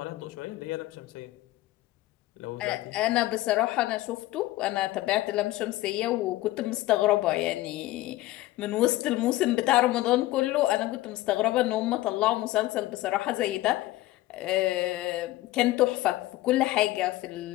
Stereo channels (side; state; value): right; quieter; 17.1 dB